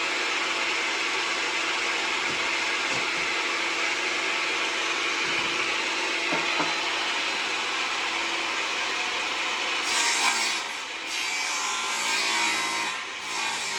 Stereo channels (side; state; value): both; identical; correlation 1.00